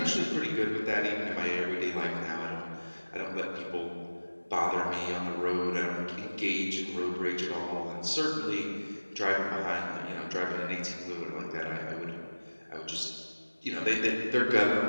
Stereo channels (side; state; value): both; inverted; correlation -1.00